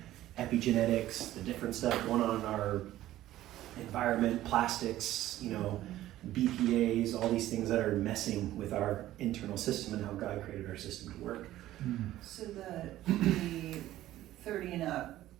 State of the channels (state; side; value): quieter; left; 14.4 dB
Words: epigenetics, the different stuff going on in our environment, plastics, BPAs, all these things that are messing with our internal system and how God created our system to work. So the 30 and up